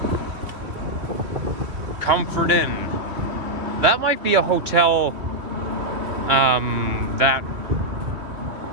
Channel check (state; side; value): late; left; 2.5 ms